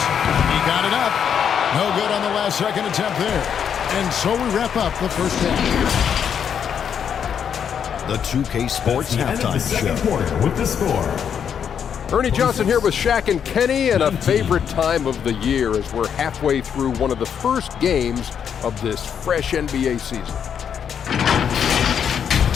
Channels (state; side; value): quieter; right; 7.9 dB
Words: He got it up. No good on the last second attempt there. And so we wrap up the first half. The 2K Sports Halftime Show. Quarter with the score. Ernie Johnson here with Shaq and Kenny, and a favorite time of the year as we're halfway through one of the first games of this fresh NBA season.